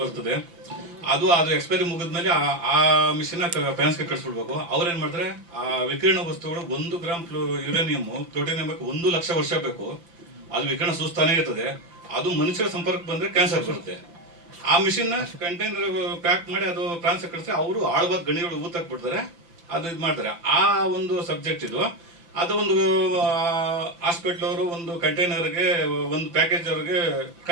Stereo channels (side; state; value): left; late; 5.9 ms